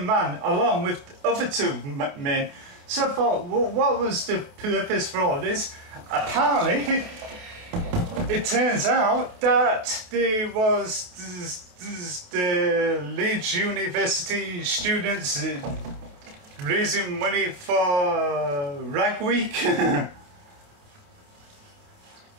man along with the other two men. So I thought, well, what was the purpose for all this? Apparently, it turns out that there was the Leeds University students raising money for Rag Week.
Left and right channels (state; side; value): late; left; 28 ms